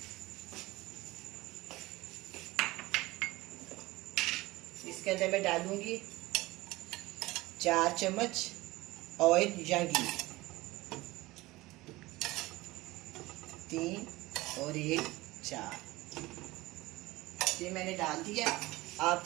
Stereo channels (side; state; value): left; quieter; 19.9 dB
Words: इसके अंदर मैं डालूँगी 4 चम्मच ऑयल या घी, 3 और 1 4। ये मैंने डाल दिया। आप